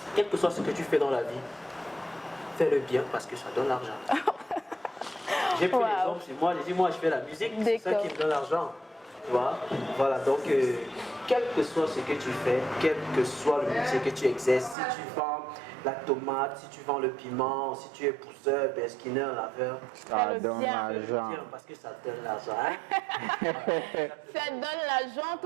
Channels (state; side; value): drops out; left; at 14.8 s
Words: quel que soit ce que tu fais dans la vie, fais-le bien parce que ça donne l'argent. J'ai pris l'exemple chez moi, j'ai dit, moi, je fais la musique, c'est ça qui me donne l'argent. Tu vois? Voilà, donc, quel que soit ce que tu fais, quel que soit le métier que tu exerces, si tu vends la tomate, si tu vends le piment, si tu es pousseur, skinner, laveur, ça donne bien. l'argent. parce que ça donne l'argent. Hein? Ça donne l'argent,